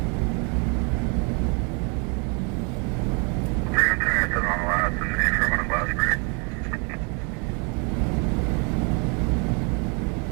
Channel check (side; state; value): left; quieter; 34.4 dB